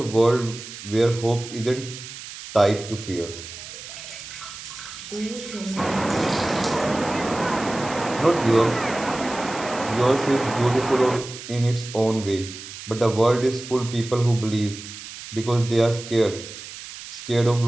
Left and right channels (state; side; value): noise; right; hiss, 13 dB below the sound